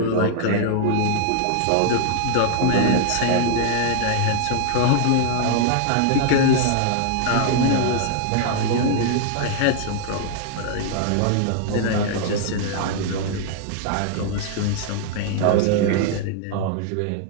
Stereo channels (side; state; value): both; different; correlation 0.00